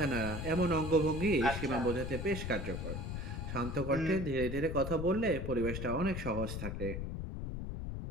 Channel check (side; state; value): left; noise; rumble, 5 dB below the sound